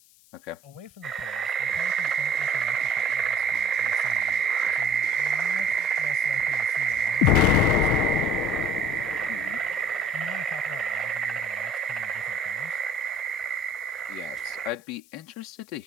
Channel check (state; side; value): noise; left; hiss, 28 dB below the sound